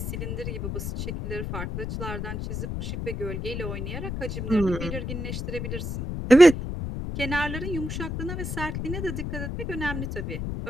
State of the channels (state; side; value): noise; left; rumble, 4 dB below the sound